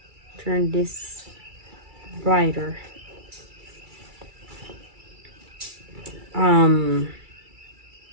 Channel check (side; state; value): left; late; 2.3 ms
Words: turn this brighter.